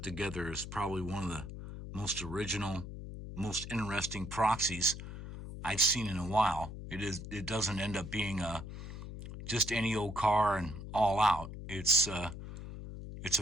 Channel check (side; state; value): left; noise; hum, 9 dB below the sound